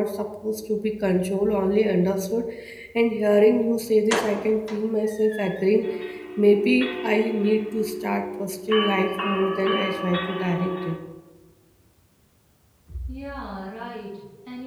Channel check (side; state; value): both; identical; correlation 1.00